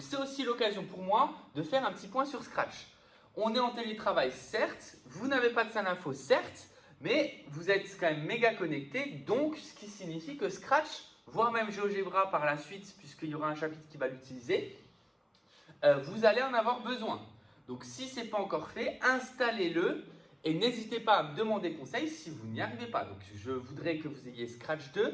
c'est aussi l'occasion pour moi de faire un petit point sur Scratch. On est en télétravail, certes, vous n'avez pas de salle info, certes, mais vous êtes quand même méga connecté, donc ce qui signifie que Scratch, voire même GeoGebra par la suite, puisqu'il y aura un chapitre qui va l'utiliser, vous allez en avoir besoin. Donc si ce n'est pas encore fait, installez-le et n'hésitez pas à me demander conseil si vous n'y arrivez pas. Donc je voudrais que vous ayez Scratch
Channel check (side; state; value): both; identical; correlation 1.00